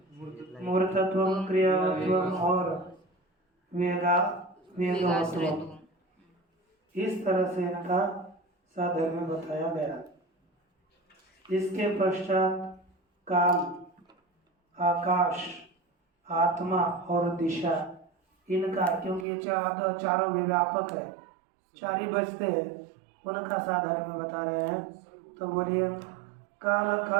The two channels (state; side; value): drops out; left; at 19.2 s